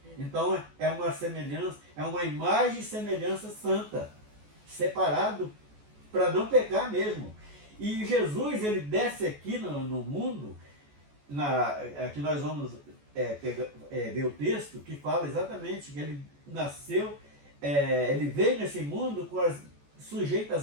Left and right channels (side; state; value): left; late; 14 ms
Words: Então é uma semelhança, é uma imagem e semelhança santa, separado para não pecar mesmo. E Jesus, ele desce aqui no mundo, aqui nós vamos ver o texto que fala exatamente que ele nasceu, ele veio nesse mundo sujeito